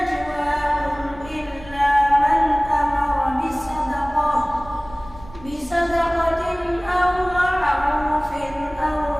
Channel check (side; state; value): right; noise; rumble, 19 dB below the sound